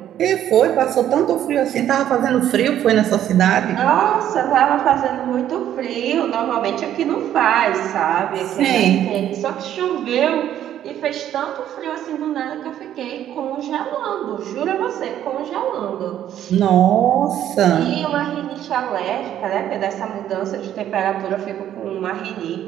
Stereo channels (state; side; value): quieter; left; 11.1 dB